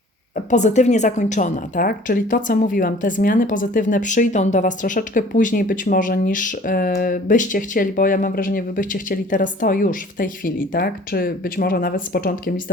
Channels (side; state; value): both; normal; correlation 0.50